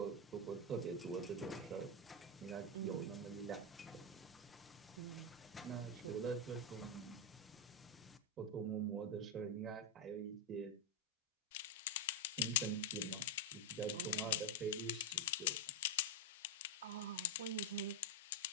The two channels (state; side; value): normal; both; correlation 0.02